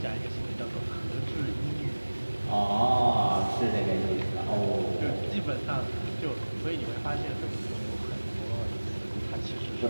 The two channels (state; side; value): inverted; both; correlation -1.00